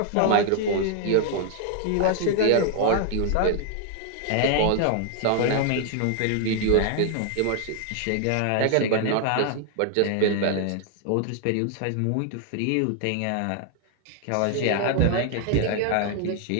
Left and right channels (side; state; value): both; different; correlation 0.00